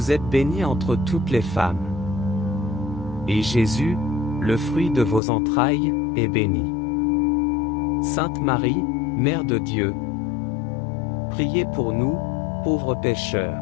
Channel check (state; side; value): drops out; right; at 5.2 s